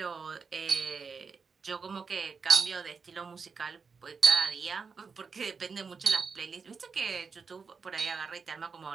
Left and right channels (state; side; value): quieter; left; 5.3 dB